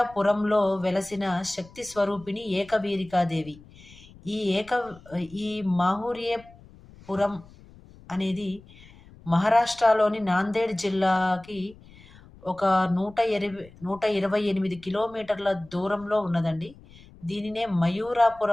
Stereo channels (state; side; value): noise; left; rumble, 23 dB below the sound